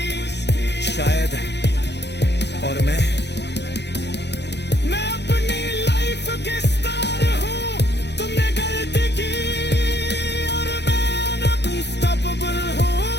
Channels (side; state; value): right; late; 0.50 ms